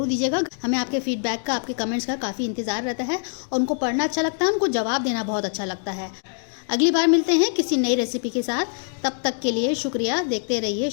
दीजिएगा। हमें आपके फीडबैक का, आपके कमेंट्स का काफ़ी इंतज़ार रहता है और उनको पढ़ना अच्छा लगता है, उनको जवाब देना बहुत अच्छा लगता है। अगली बार मिलते हैं किसी नई रेसिपी के साथ, तब तक के लिए शुक्रिया। देखते रहिए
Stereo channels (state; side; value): silent; right; 63 dB below the other